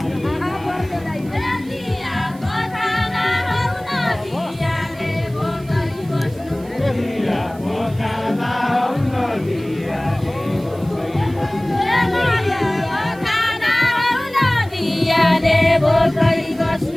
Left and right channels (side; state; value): right; noise; hiss, 25 dB below the sound